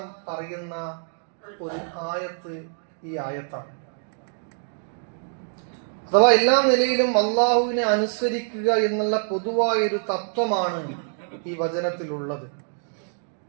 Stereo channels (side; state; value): left; silent; digital silence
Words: പറയുന്ന ഒരു ആയത്ത് ഈ ആയത്താണ്. അഥവാ എല്ലാ നിലയിലും അള്ളാഹുവിനെ അനുസരിക്കുക എന്നുള്ള പൊതുവായൊരു തത്വമാണ് ഈ വചനത്തിലുള്ളത്.